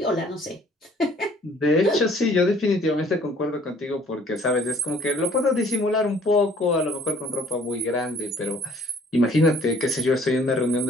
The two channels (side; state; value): both; normal; correlation 0.57